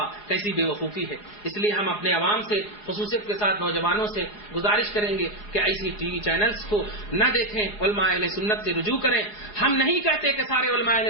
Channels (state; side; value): late; right; 4.8 ms